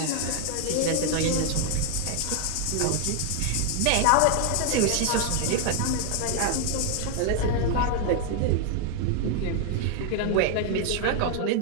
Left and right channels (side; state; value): both; different; correlation 0.00